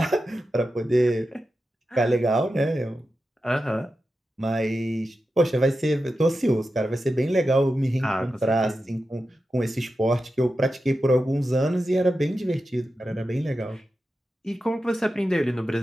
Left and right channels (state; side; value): normal; both; correlation 0.91